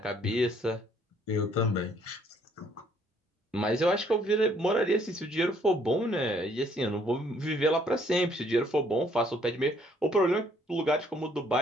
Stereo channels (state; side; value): normal; both; correlation 0.64